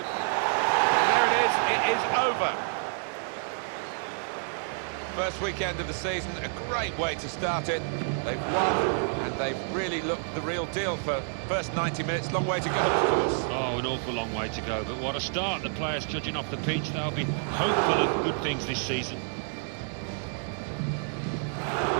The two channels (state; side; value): silent; left; 59 dB below the other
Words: And there it is over. First weekend of the season, a great way to start it. They've won, and they've really looked the real deal for first 90 minutes. Long way to go, of course. Oh, an awful long way to go, but what a start. The players judging off the pitch, they'll be hopeful of good things this season.